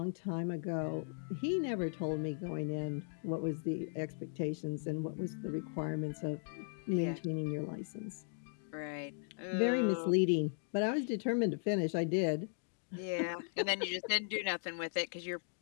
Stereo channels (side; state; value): right; silent; digital silence